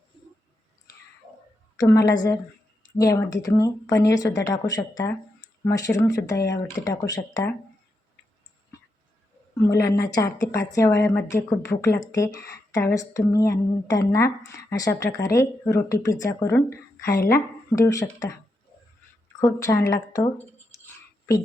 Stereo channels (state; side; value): normal; both; correlation 0.84